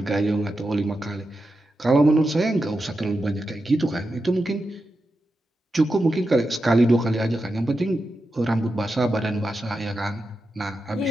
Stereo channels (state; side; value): normal; both; correlation 0.89